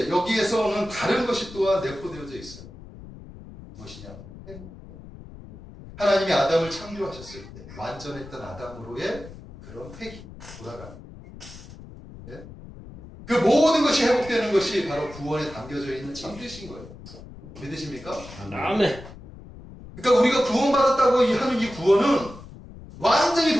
여기에서는 다른 것이 또한 내포되어져 있어요. 무엇이냐? 행복. 하나님이 아담을 창조하셨을 때 완전했던 아담으로의 그런 회귀, 돌아가는. 예? 그 모든 것이 회복되는 것이 바로 구원에 담겨져 있는 참 뜻인 거예요. 믿으십니까? 아멘. 그러니까 우리가 구원받았다고 하는 이 구원은 완전히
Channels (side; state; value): left; noise; rumble, 16 dB below the sound